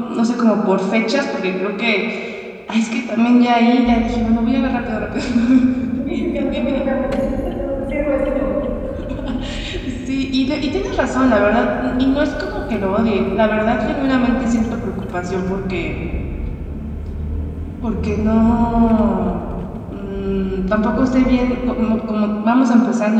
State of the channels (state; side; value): identical; both; correlation 1.00